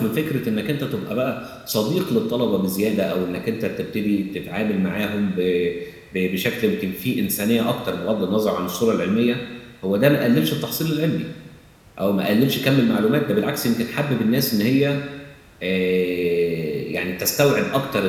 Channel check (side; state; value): both; identical; correlation 1.00